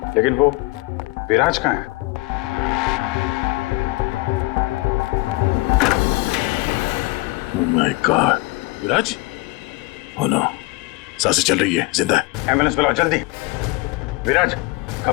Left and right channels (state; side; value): quieter; right; 21.6 dB